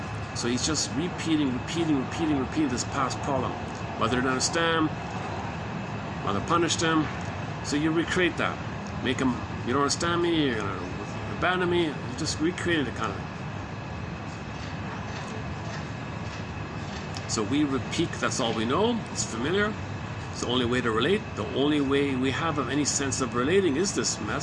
So he's just repeating this past problem. Mother didn't understand, mother punished him. So you recreate that. Make him, you don't understand me, you're gonna abandon me. You just recreated it kind of. So we repeat, that's all we know, it's familiar. It's the only way to relate. The only way we have of any sense of relating is this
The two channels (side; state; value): both; identical; correlation 1.00